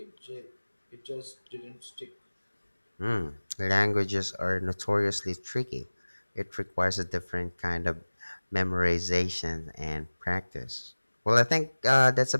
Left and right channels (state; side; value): inverted; both; correlation -1.00